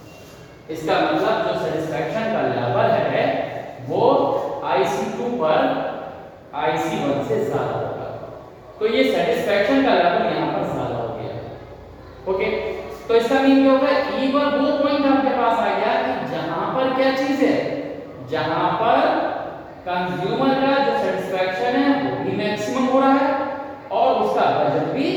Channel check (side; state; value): both; identical; correlation 1.00